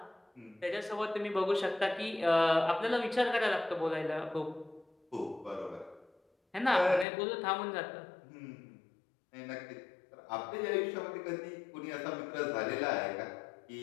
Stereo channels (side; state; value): right; drops out; at 7.1 s